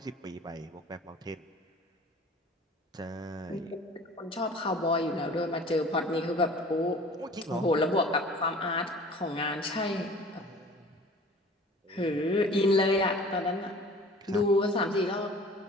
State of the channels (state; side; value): normal; both; correlation 0.45